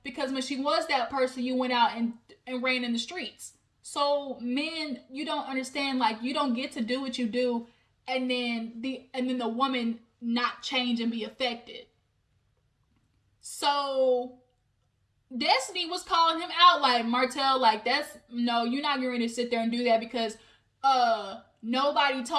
because when she was that person, you went out and ran in the streets. So men, you don't understand, like, you don't get to do what you do and then the woman not change and be affected. So Destiny was calling him out, like, Martell, like, you're not going to sit there and do that because nobody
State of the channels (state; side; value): identical; both; correlation 1.00